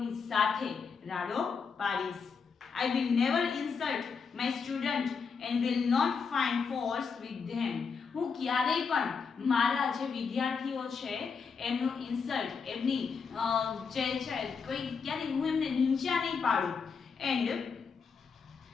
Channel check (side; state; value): right; quieter; 5.6 dB